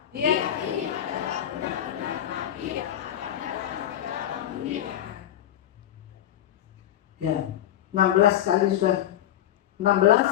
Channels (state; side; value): quieter; right; 11.5 dB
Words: dia ini adalah benar-benar nabi yang akan datang ke dalam dunia. Ya, 16 kali sudah.